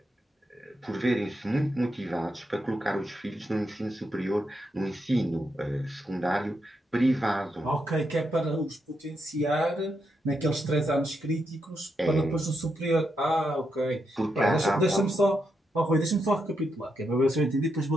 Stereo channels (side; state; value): both; normal; correlation 0.82